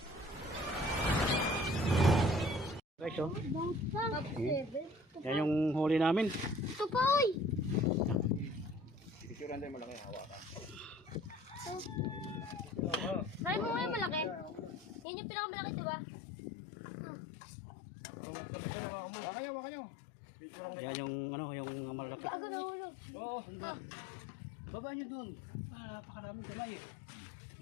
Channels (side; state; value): right; drops out; at 15.1 s